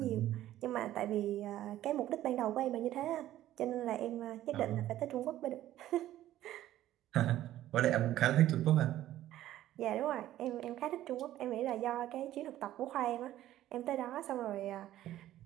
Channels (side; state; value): left; quieter; 13.5 dB